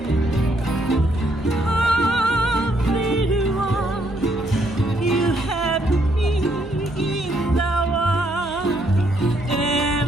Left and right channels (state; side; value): noise; right; hum, 18 dB below the sound